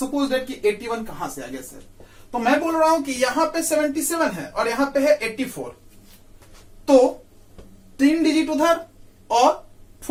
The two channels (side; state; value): both; identical; correlation 1.00